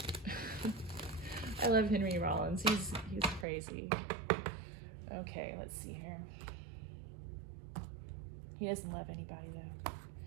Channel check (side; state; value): left; drops out; at 3.5 s